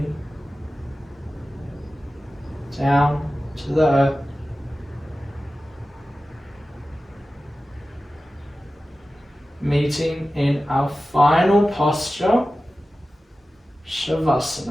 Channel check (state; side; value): normal; both; correlation 0.95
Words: down to the earth. Meeting in our final posture,